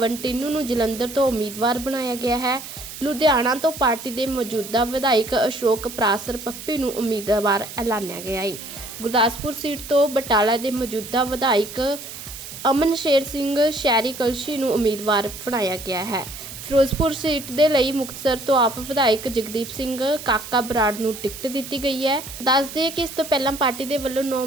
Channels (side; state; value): right; noise; hiss, 12 dB below the sound